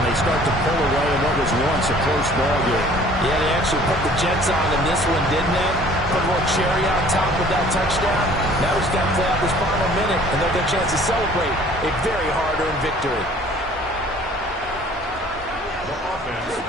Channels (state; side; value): normal; both; correlation 0.53